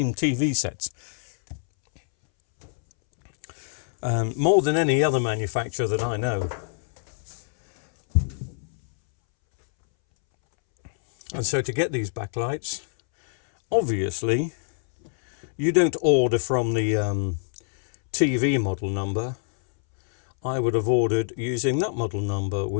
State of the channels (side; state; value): right; silent; 62 dB below the other